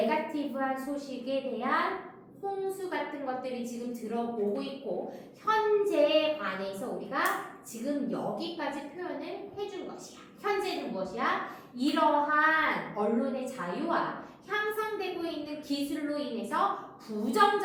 소식에 대한 홍수 같은 것들이 지금 들어오고 있고 현재에 관해서 우리가 지금 여기까지 표현을 해준 것이야. 현재는 무엇이야? 이러한 언론의 자유와 향상되고 있는 기술로 인해서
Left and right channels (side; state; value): both; identical; correlation 1.00